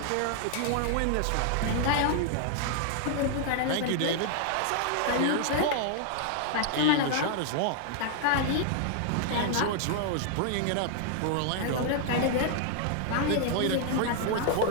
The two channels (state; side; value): different; both; correlation 0.00